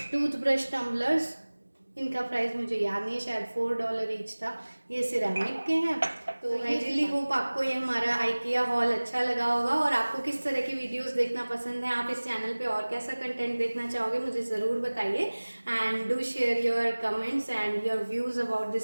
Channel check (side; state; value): both; inverted; correlation -1.00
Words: टूथब्रश टम्बलर्स, इनका प्राइस मुझे याद नहीं है, शायद $4 ईच था। ये सिरेमिक के हैं। तो आई रियली होप आपको ये हमारा आइकिया हॉल अच्छा लगा होगा, और आपको किस तरह की वीडियोस देखना पसंद है, आप इस चैनल पे और कैसा कंटेंट देखना चाहोगे मुझे ज़रूर बताइए। And do share your comments and your views about